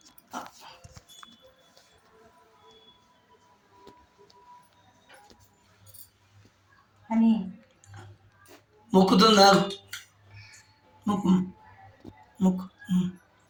అని మొక్కుతుందా? మొక్కు మొక్కు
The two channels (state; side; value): identical; both; correlation 1.00